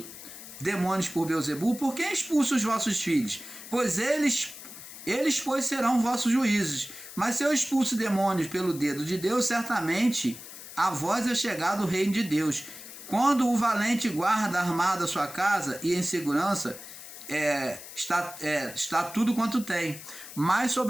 demônios por Beelzebul, por que expulso os vossos filhos? Pois eles pois serão vossos juízes. Mas se eu expulso demônios pelo dedo de Deus, certamente a vós é chegado o reino de Deus. Quando o valente guarda armado a sua casa e em segurança, está tudo quanto tem. Mas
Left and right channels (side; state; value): left; noise; hiss, 14 dB below the sound